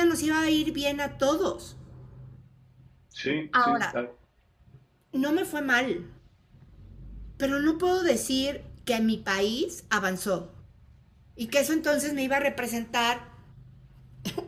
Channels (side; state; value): both; identical; correlation 1.00